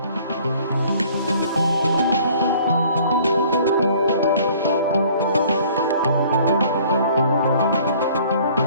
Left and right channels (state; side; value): inverted; both; correlation -0.54